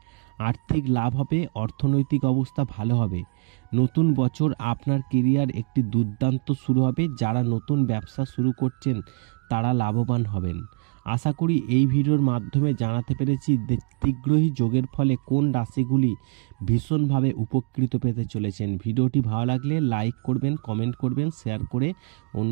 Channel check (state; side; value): quieter; left; 35.4 dB